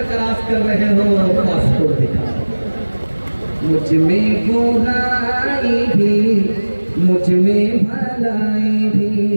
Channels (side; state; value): both; inverted; correlation -1.00